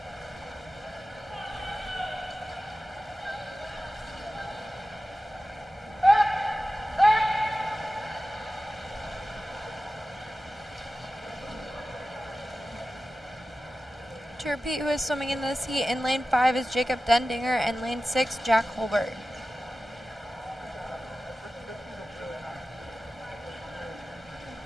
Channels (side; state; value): both; normal; correlation 0.95